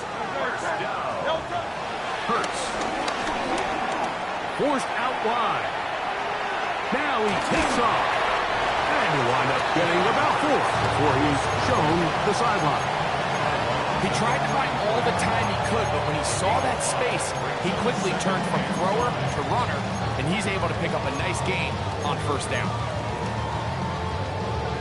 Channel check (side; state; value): both; identical; correlation 1.00